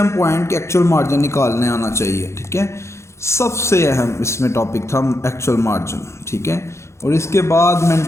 पॉइंट कि एक्चुअल मार्जिन निकालने आना चाहिए, ठीक है, सबसे अहम इसमें टॉपिक था एक्चुअल मार्जिन, ठीक है। और इसके बाद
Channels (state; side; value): late; right; 0.13 ms